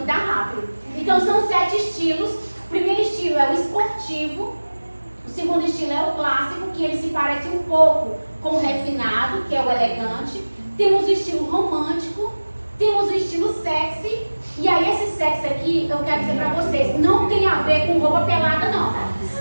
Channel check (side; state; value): both; inverted; correlation -1.00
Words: tá rápido. Então são 7 estilos. O primeiro estilo é o esportivo. O segundo estilo é o clássico, que ele se parece um pouco com o refinado, que é o elegante. Temos o estilo romântico, temos o estilo sexy. E aí esse sexy aqui, eu quero dizer pra vocês, não tem a ver com roupa pelada não.